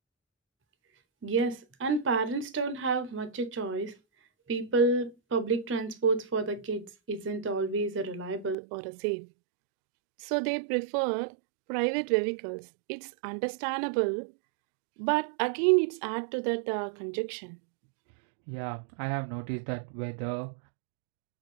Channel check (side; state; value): left; drops out; at 8.6 s